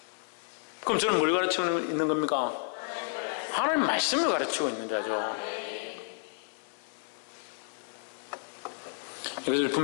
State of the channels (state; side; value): silent; right; 57 dB below the other